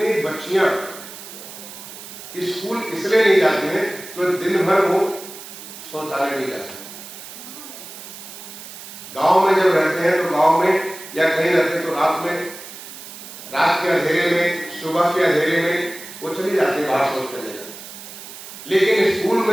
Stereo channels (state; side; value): noise; right; hiss, 14 dB below the sound